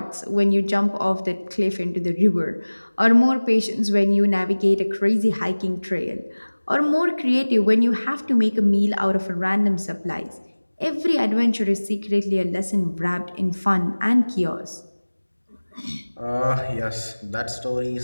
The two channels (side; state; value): both; inverted; correlation -1.00